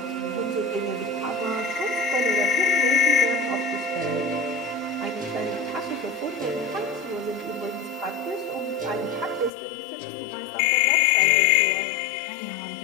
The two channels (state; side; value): drops out; right; at 9.5 s